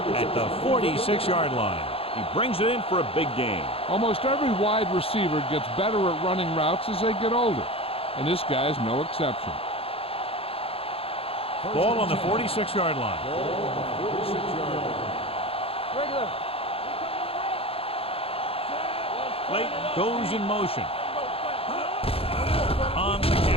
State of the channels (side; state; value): right; late; 0.27 ms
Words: at the 46-yard line. He brings it in for a big gain. Almost every wide receiver gets better at running routes as they get older, and this guy's no exception. Ball on the 46-yard line. Ball on the 46-yard line. Regular. Clayton goes in motion. On the